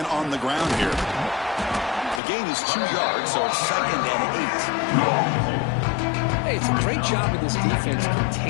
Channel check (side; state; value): right; drops out; at 2.2 s